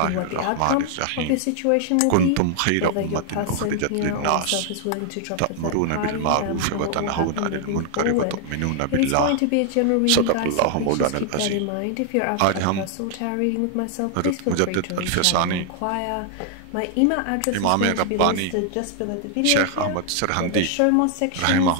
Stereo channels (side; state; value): both; different; correlation 0.00